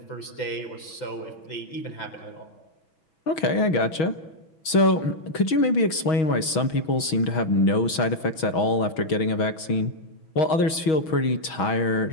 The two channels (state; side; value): late; right; 6.3 ms